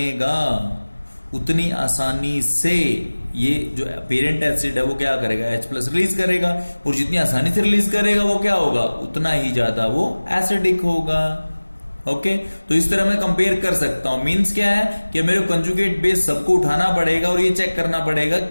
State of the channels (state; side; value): inverted; both; correlation -1.00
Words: उतनी आसानी से ये जो पेरेंट एसिड है वो क्या करेगा, H प्लस रिलीज करेगा, और जितनी आसानी से रिलीज करेगा वो क्या होगा, उतना ही ज्यादा वो एसिडिक होगा। ओके, तो इस तरह मैं कंपेयर कर सकता हूं। मींस क्या है कि मेरे कंजुगेट बेस सबको उठाना पड़ेगा और ये चेक करना पड़ेगा